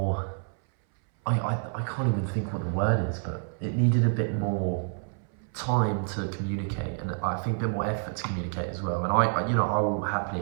I can't even think what the word is, but it needed a bit more time to communicate, and I think a bit more effort to communicate as well. And I you know, I will happily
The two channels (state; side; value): silent; left; 59 dB below the other